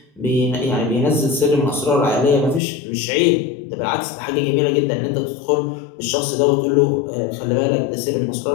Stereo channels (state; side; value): drops out; right; at 2.6 s